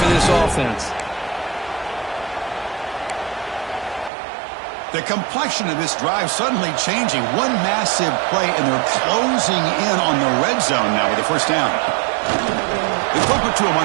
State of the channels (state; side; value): drops out; left; at 4.1 s